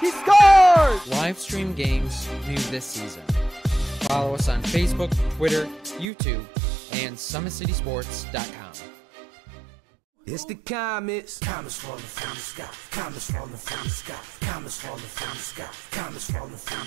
scores! Live stream games new this season. Follow us on Facebook, Twitter, YouTube, and SummitCitySports.com. It's the comets. Comets falling from the sky. Comets falling from the sky. Comets falling from the sky. Comets falling from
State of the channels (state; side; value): drops out; left; at 6.1 s